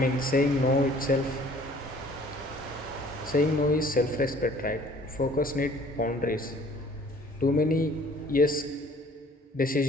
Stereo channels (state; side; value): normal; both; correlation 0.54